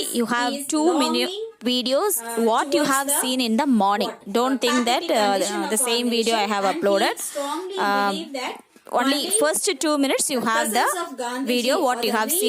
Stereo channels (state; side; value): identical; both; correlation 1.00